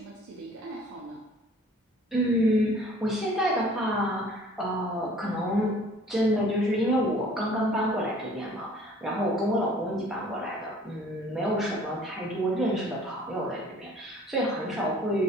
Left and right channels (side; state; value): both; normal; correlation 0.53